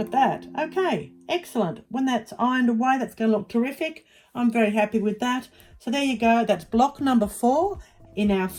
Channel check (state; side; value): identical; both; correlation 1.00